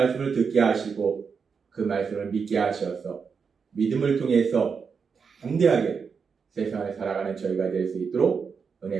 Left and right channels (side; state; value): left; quieter; 5.8 dB